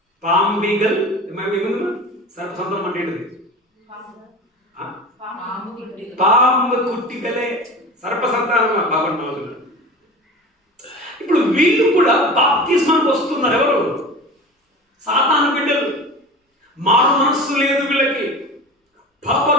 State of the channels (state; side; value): normal; both; correlation 0.34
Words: పాంబిగల్. సర్ప సంతానం అంటే ఏంటిది? పాంబు కుట్టిగలే సర్ప సంతానమా. బాగుంటున్నా. ఇప్పుడు వీళ్ళు కూడా బాప్తిస్మానికి వస్తున్నారు. ఎవరు? సాతాను బిడ్డలు. మారు మనస్సు లేదు వీళ్ళకి,